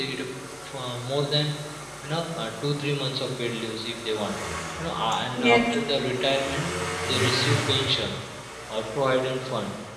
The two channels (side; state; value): both; identical; correlation 1.00